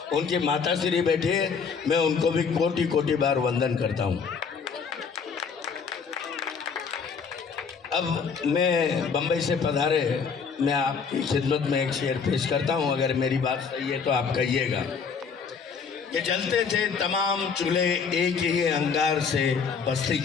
उनकी माताश्री बैठे हैं, मैं उनको भी कोटि कोटि बार वंदन करता हूँ। अब मैं बम्बई से पधारे, मैं आपकी खिदमत में एक शेर पेश करता हूँ। अगर मेरी बात सही है तो आप कहिएगा कि जलते थे तमाम चूल्हे एक ही अंगार से बस्ती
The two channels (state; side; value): quieter; right; 5.8 dB